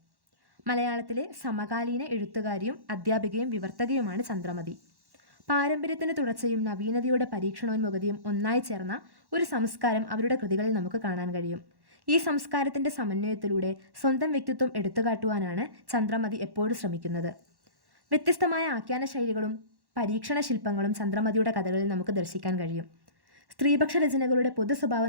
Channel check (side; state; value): left; late; 1.1 ms